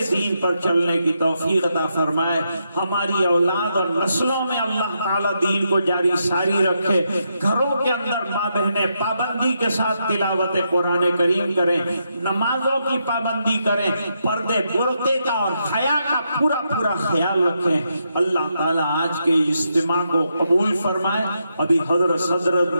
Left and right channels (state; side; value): inverted; both; correlation -0.81